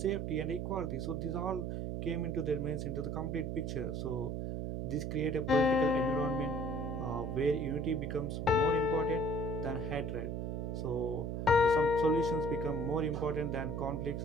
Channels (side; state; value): right; noise; hum, 3 dB below the sound